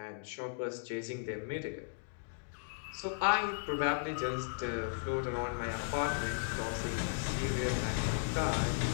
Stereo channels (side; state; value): right; silent; digital silence